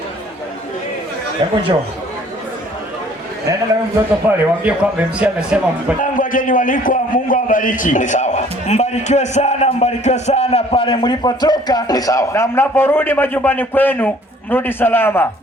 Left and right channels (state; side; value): normal; both; correlation 0.56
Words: Hebu njoo. Nenda na mtoto pale, waambie kwamba MC amesema mpate. Tangu wageni walikwa, Mungu awabariki. Ni sawa. Mbarikiwe sana pale mlipotoka. Ni sawa. Na mnaporudi majumbani kwenu, mrudi salama.